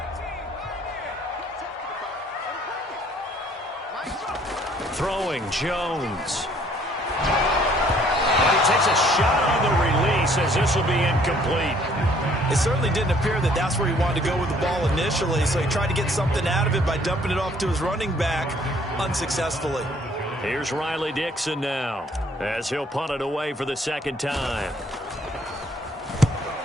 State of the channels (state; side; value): normal; both; correlation 0.61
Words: Throwing, Jones. And he takes a shot on the release as this will be incomplete. It certainly didn't appear that that's where he wanted to go with the ball initially, so he tried to get something out of it by dumping it off to his running back unsuccessfully. Here's Riley Dixon now as he'll punt it away for the 2nd time.